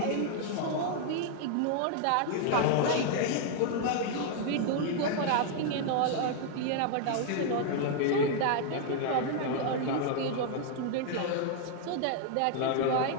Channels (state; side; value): different; both; correlation 0.00